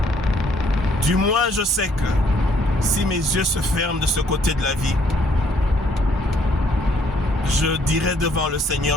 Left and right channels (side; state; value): both; normal; correlation 0.66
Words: du moins je sais que si mes yeux se ferment de ce côté de la vie, je dirai devant le